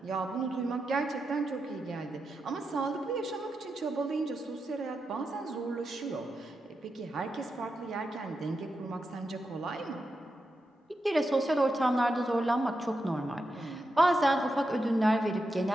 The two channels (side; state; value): both; normal; correlation 0.87